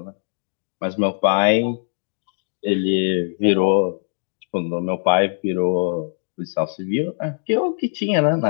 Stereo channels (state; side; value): silent; right; digital silence